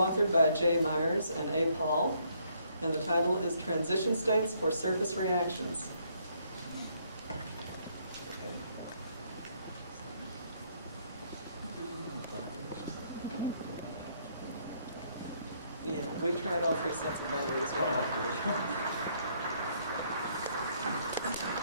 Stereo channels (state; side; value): inverted; both; correlation -0.69